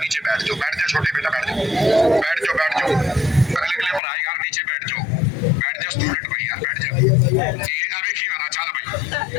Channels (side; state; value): right; drops out; at 4.0 s